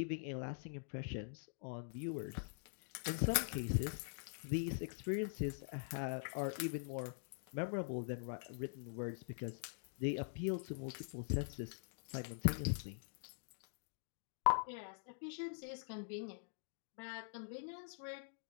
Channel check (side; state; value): right; silent; digital silence